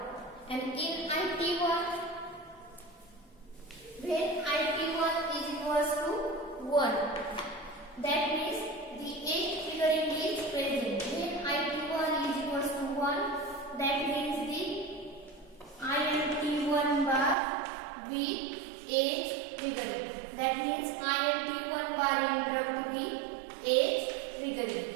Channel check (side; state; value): left; drops out; at 17.4 s